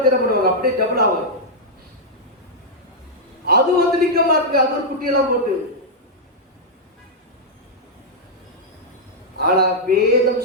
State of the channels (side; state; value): both; normal; correlation -0.06